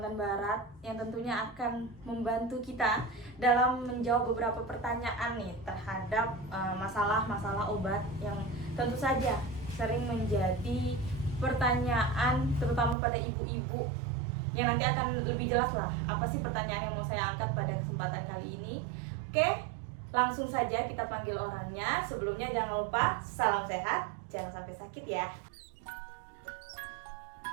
Barat yang tentunya akan membantu kita dalam menjawab beberapa pertanyaan nih terhadap masalah-masalah obat yang tentu saja sering menjadi pertanyaan terutama pada ibu-ibu, yang nanti akan lebih jelas lah apa sih pertanyaan yang mau saya angkat pada kesempatan kali ini. Oke, langsung saja kita panggil orangnya. Sebelumnya jangan lupa salam sehat, jangan sampai sakit ya.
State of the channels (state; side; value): drops out; left; at 13.0 s